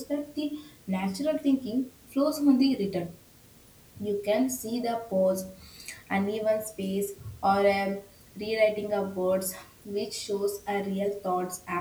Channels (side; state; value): both; identical; correlation 1.00